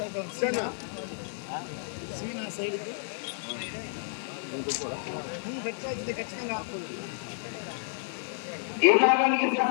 సైడ్కి ఖచ్చితంగా ఈ భాగానికి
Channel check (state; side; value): silent; right; 57 dB below the other